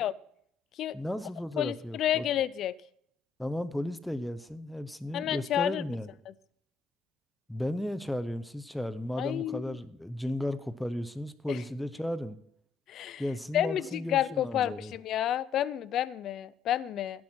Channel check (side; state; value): right; quieter; 5.9 dB